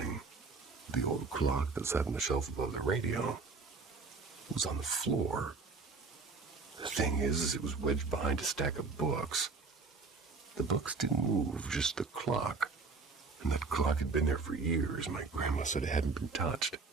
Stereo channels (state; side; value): quieter; left; 4.3 dB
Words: The old clock that sat on the shelf above the radio was on the floor. The thing is, it was wedged behind a stack of books. The books didn't move, just the clock. And that clock had been there for years. My grandma said it hadn't been touched.